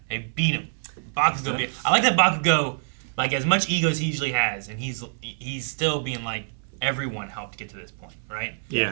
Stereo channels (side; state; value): left; silent; 61 dB below the other